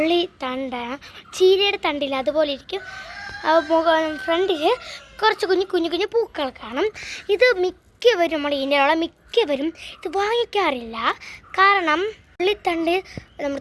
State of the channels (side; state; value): both; identical; correlation 1.00